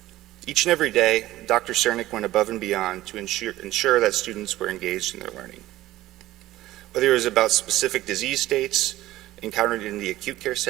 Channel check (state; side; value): quieter; left; 15.8 dB